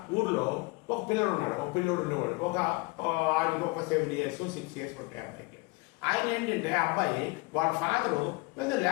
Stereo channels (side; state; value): right; quieter; 25.7 dB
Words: ఊర్లో ఒక పిల్లడు ఉన్నాడు, ఉండేవాడు. ఆడికి ఒక 7 years 6 years ఉంటాయి అబ్బాయికి. ఆయన ఏంటంటే అబ్బాయి వాళ్ళ ఫాదరు పెద్ద